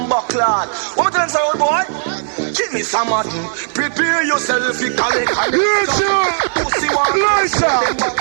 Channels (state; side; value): silent; left; digital silence